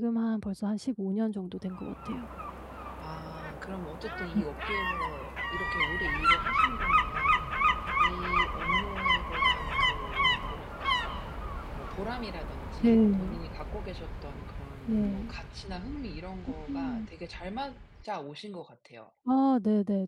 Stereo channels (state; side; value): identical; both; correlation 1.00